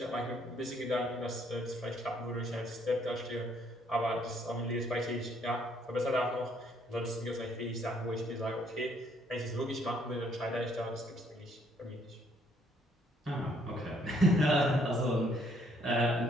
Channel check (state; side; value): normal; both; correlation 0.67